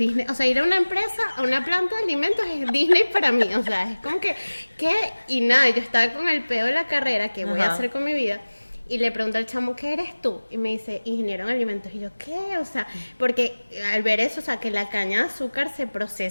o sea, ir a una empresa, a una planta de alimentos es Disney para mí, o sea, es como que, ¿qué? Y nada, yo estaba con el pedo de la carrera, ¿qué voy a hacer con mi vida? Y le pregunto al chamo, ¿qué eres tú? Y me dice, ingeniero en alimentos. Y yo, ¿qué? O sea, porque al ver eso, o sea, que la caña de azúcar se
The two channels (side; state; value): both; inverted; correlation -1.00